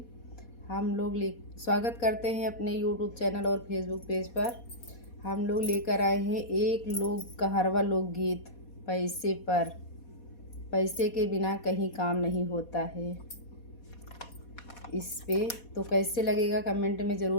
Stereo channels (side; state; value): right; late; 4.2 ms